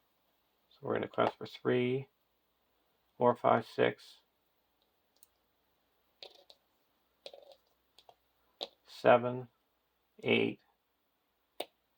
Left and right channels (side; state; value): both; identical; correlation 1.00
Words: So we're going to quest for 3, 4, 5, 6, 7, 8.